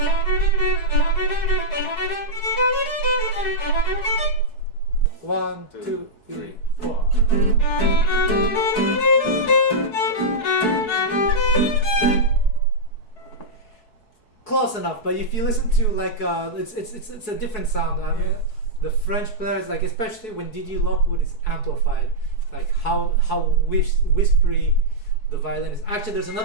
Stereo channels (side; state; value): right; late; 4.7 ms